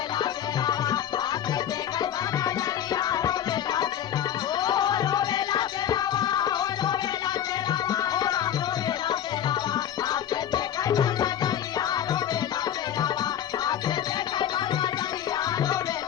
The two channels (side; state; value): right; quieter; 10.2 dB